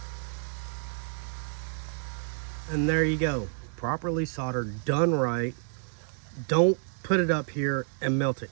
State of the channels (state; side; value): silent; left; 56 dB below the other